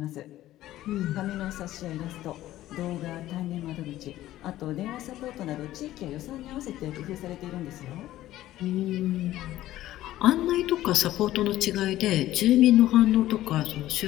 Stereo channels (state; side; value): quieter; right; 14.5 dB